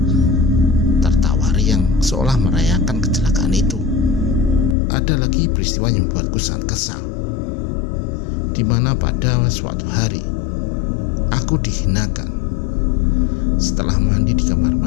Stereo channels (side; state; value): right; drops out; at 4.8 s